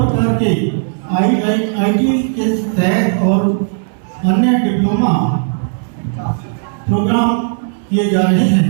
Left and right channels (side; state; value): left; silent; digital silence